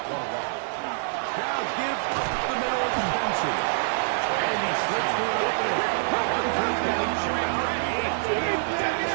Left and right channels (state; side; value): silent; left; digital silence